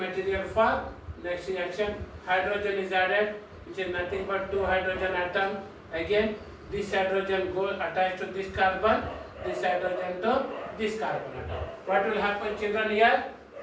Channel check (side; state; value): both; identical; correlation 1.00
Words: for next reaction. hydrogen is added, which is nothing but two hydrogen atom. Again, this hydrogen goes attached to this carbon, this hydrogen to this carbon atom. What will happen, children, here?